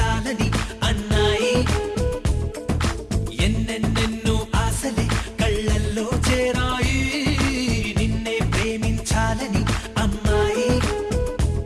అన్నాయి ఎన్నెన్నెన్నో ఆశలే కళ్ళల్లో చేరాయి నిన్నే ప్రేమించాలని అమ్మాయి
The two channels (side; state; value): both; identical; correlation 1.00